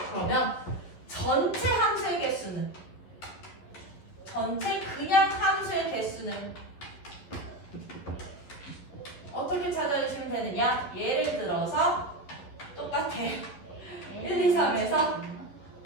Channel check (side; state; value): right; late; 11 ms